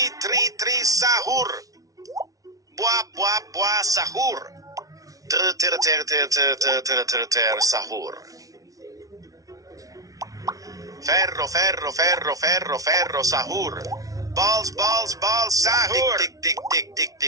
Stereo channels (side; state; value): left; late; 0.17 ms